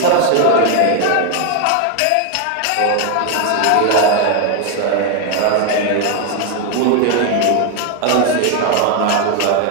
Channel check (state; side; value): different; both; correlation 0.01